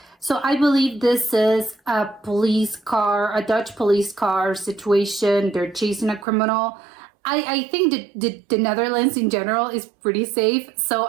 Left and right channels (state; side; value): drops out; left; at 6.2 s